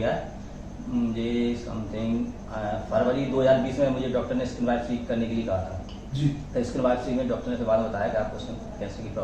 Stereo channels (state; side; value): identical; both; correlation 1.00